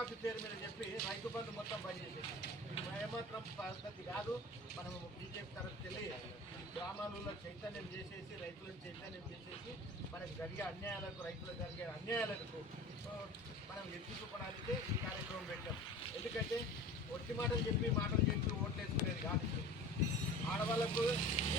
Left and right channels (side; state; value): both; normal; correlation 0.38